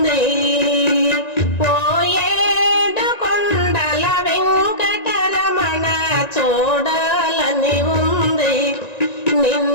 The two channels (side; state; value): right; late; 1.9 ms